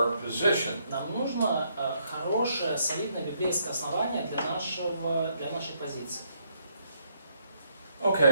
position. Нам нужно хорошее, солидное библейское основание для нашей позиции.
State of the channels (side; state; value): both; inverted; correlation -0.73